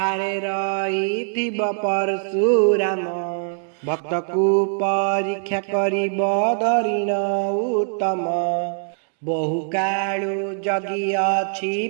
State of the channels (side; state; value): left; silent; digital silence